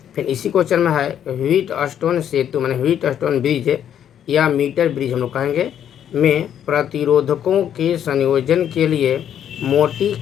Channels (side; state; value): right; quieter; 9.6 dB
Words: फिर इसी क्वेश्चन में है व्हीट स्टोन सेतु माने व्हीट स्टोन ब्रिज या मीटर ब्रिज हम लोग कहेंगे में प्रतिरोधकों के संयोजन के लिए